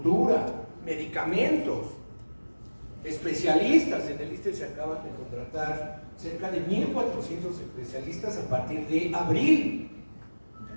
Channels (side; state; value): both; inverted; correlation -1.00